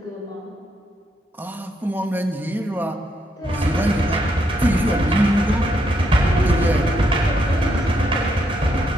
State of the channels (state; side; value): normal; both; correlation 0.77